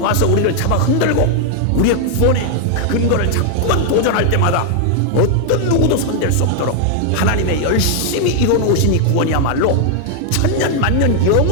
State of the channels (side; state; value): both; different; correlation 0.00